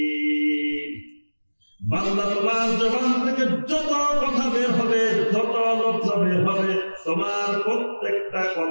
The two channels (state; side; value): inverted; both; correlation -1.00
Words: বান্দা তোমার জবান থেকে যত কথা বের হবে, যত লফজ বের হবে, তোমার প্রত্যেকটা